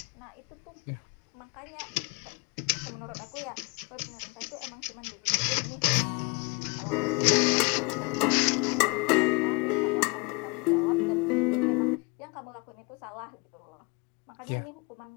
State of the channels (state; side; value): quieter; right; 28.0 dB